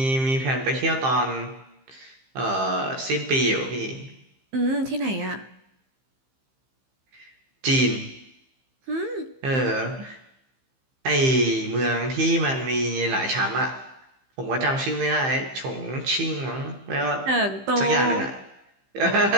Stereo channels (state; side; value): late; left; 15 ms